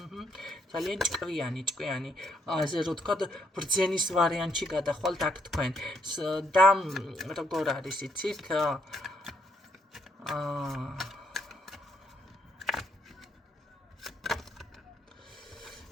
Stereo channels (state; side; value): normal; both; correlation 0.72